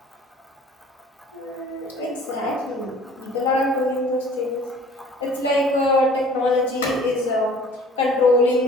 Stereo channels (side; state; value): both; normal; correlation 0.50